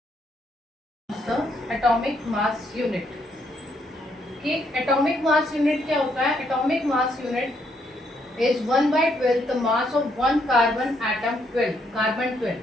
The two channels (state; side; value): normal; both; correlation 0.73